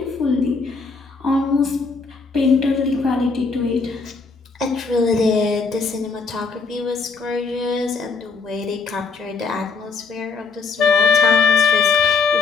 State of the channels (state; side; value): quieter; right; 4.6 dB